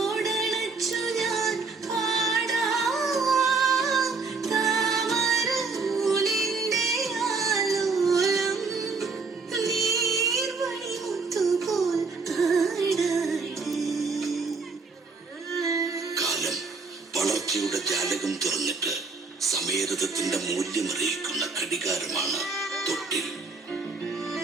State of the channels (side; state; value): left; quieter; 4.3 dB